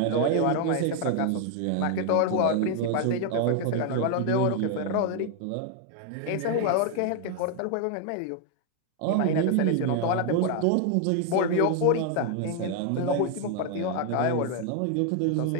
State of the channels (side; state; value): both; different; correlation 0.00